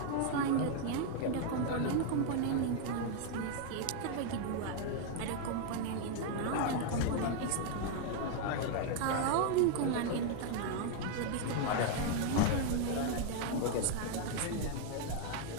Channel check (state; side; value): different; both; correlation 0.00